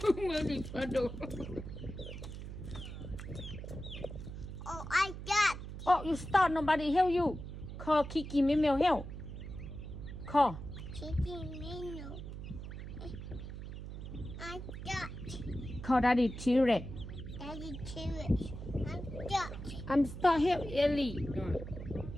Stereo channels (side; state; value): right; noise; hum, 9 dB below the sound